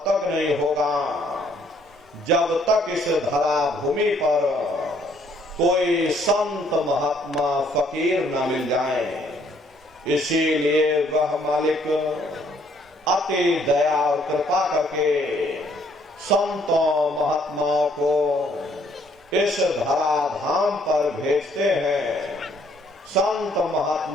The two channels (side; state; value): both; normal; correlation 0.65